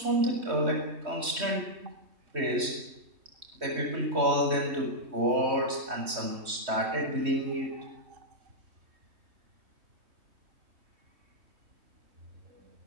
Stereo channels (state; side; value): late; left; 3.2 ms